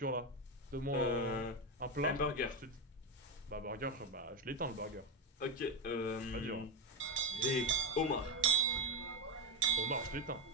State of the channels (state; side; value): normal; both; correlation 0.12